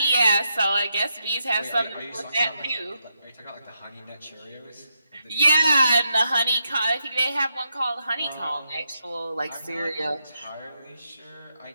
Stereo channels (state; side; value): inverted; both; correlation -0.83